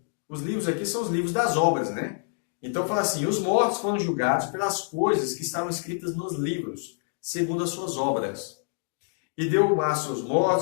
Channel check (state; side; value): silent; right; digital silence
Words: Os livros aqui são os livros das obras, né? Então fala assim, os mortos foram julgados pelas coisas que estavam escritas nos livros, segundo as suas obras. E deu o mar aos seus